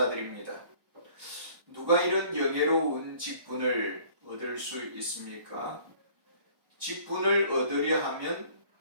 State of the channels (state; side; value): late; left; 1.1 ms